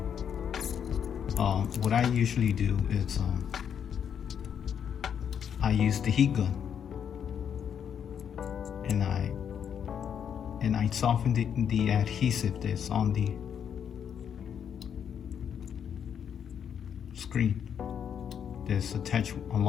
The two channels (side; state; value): right; quieter; 8.2 dB